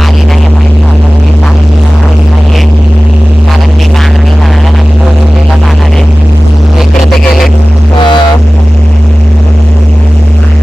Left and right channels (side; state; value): both; normal; correlation 0.97